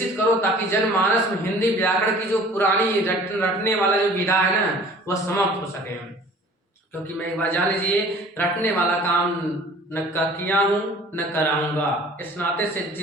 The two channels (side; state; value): both; normal; correlation 0.48